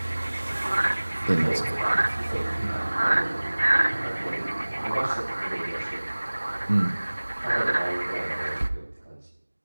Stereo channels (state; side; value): inverted; both; correlation -1.00